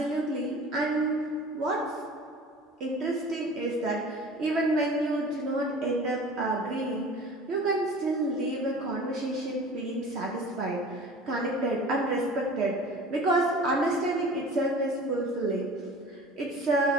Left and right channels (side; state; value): both; normal; correlation 0.42